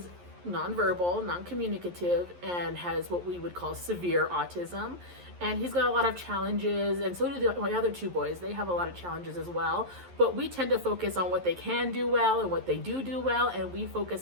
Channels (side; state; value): left; late; 11 ms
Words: nonverbal, non-communicative, and has what we would call severe autism. And he's got a lot of challenges, and so do my other 2 boys. They have a lot of challenges as well, but we tend to focus on what they can do well and what they do well, and we focus